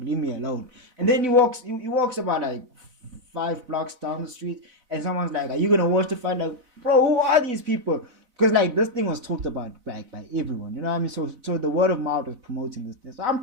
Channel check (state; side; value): late; left; 4.0 ms